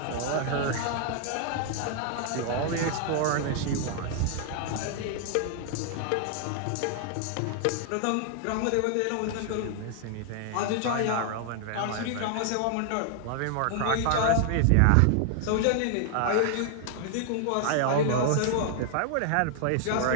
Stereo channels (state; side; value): different; both; correlation 0.00